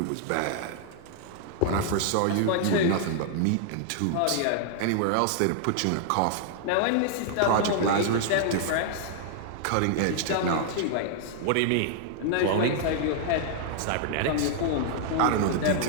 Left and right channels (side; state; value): both; different; correlation -0.01